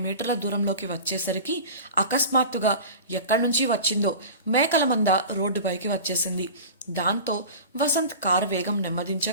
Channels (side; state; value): both; inverted; correlation -0.34